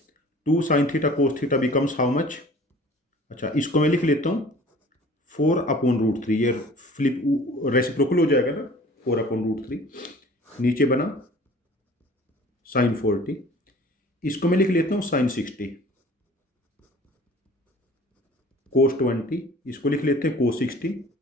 2 sin theta cos theta becomes how much. अच्छा, इसको मैं लिख लेता हूँ 4/√3, ये फ्लिप रेसिप्रोकल हो जाएगा ना, 4/√3। नीचे बना sin 40, इसको मैं लिख लेता हूँ sin 60 cos 20, इसको लिख लेते हैं cos 60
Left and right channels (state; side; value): normal; both; correlation 0.48